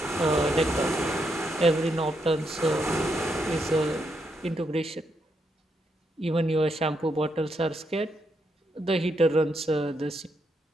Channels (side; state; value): both; normal; correlation 0.79